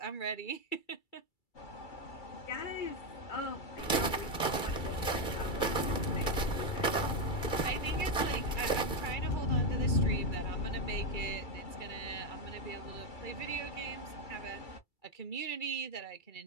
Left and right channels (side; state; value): right; late; 2.3 ms